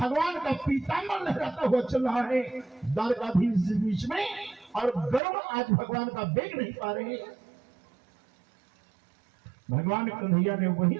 का पीताम्बर लहराता हुआ चल रहा है द्वारकाधीश बीच में, और गरुड़ आज भगवान का वेग नहीं पा रहे। भगवान कन्हैया ने वहीं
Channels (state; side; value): drops out; left; at 5.2 s